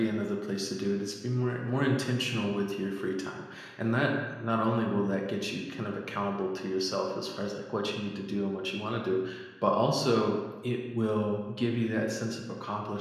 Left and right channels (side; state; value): both; identical; correlation 1.00